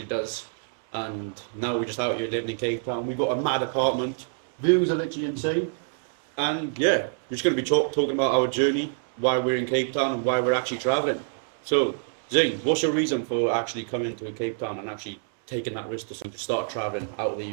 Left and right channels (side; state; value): left; silent; 60 dB below the other